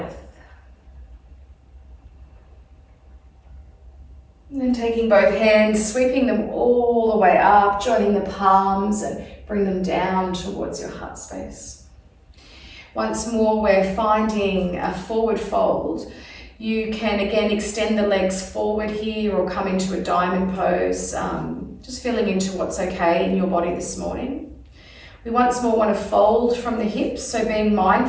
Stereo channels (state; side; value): identical; both; correlation 1.00